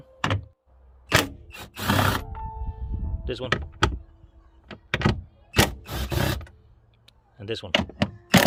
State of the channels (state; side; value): identical; both; correlation 1.00